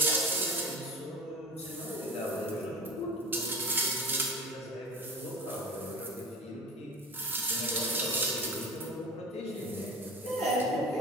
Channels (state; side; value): normal; both; correlation 0.33